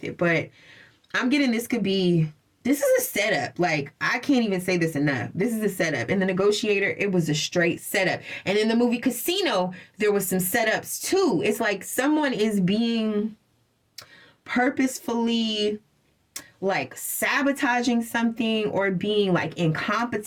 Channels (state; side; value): identical; both; correlation 1.00